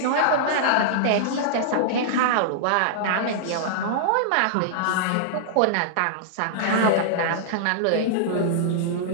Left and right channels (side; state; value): both; different; correlation -0.01